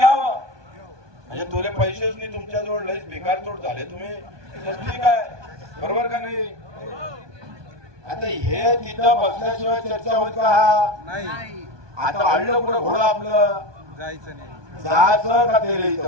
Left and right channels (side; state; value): left; late; 1.2 ms